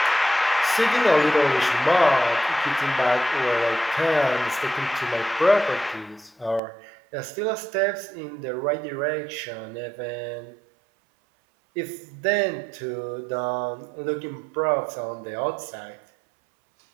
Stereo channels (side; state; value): left; drops out; at 6.6 s